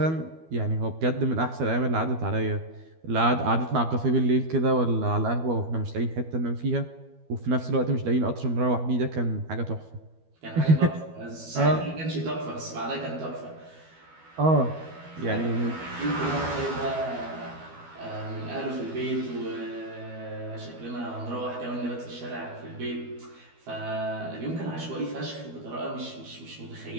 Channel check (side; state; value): left; late; 12 ms